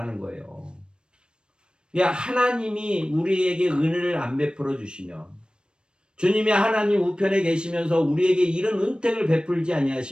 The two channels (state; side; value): late; left; 0.053 ms